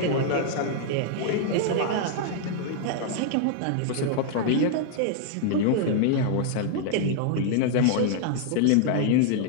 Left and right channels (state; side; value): different; both; correlation -0.01